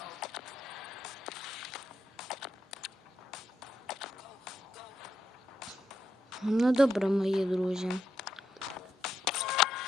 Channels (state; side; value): normal; both; correlation 0.82